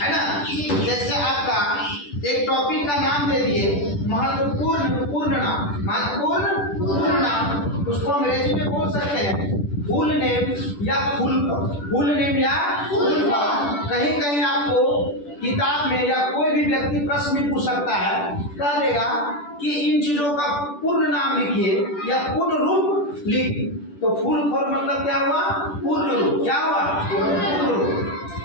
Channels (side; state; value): right; late; 10 ms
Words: है ना। जैसे आपका एक टॉपिक का नाम दे दिए महत्वपूर्ण पूर्ण नाम, उसको अंग्रेजी में बोल सकते हैं फुल नेम या फुल नेम या फुल फॉर्म। कहीं कहीं आपको किताब में या कोई भी व्यक्ति प्रश्न में पूछ सकता है, कह देगा कि इन चीजों का पूर्ण नाम लिखिए या पूर्ण रूप लिखिए। तो फुल फॉर्म मतलब क्या हुआ? पूर्ण रूप। क्या हुआ? पूर्ण रूप,